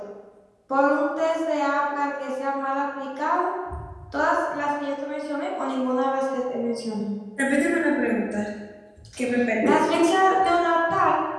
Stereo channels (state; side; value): identical; both; correlation 1.00